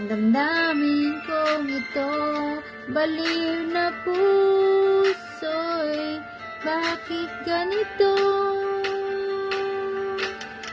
damdamin kong ito? Baliw na puso'y bakit ganito?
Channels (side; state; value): both; identical; correlation 1.00